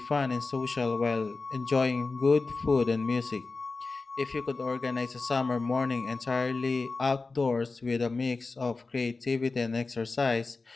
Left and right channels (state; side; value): quieter; right; 3.9 dB